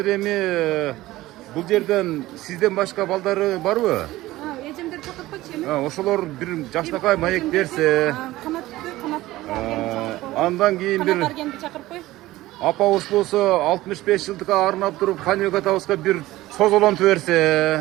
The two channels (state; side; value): quieter; left; 17.2 dB